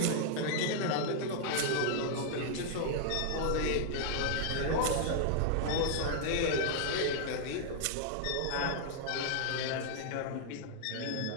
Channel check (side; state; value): both; different; correlation -0.01